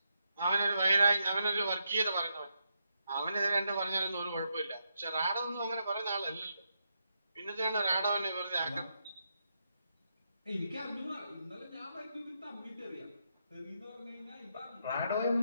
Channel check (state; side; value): inverted; both; correlation -0.82